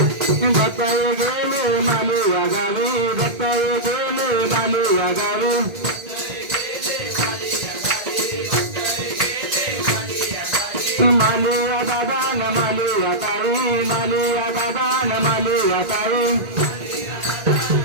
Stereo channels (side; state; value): left; late; 1.8 ms